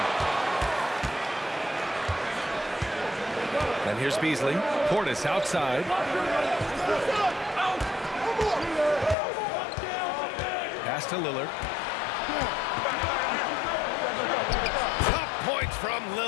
And here's Beasley. Portis outside. Pass to Lillard. Tough points from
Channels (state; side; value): drops out; right; at 9.2 s